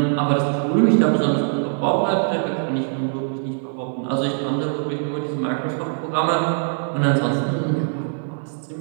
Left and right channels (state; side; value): silent; left; 57 dB below the other